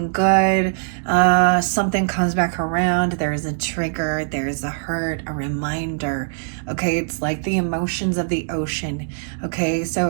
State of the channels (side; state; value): left; silent; digital silence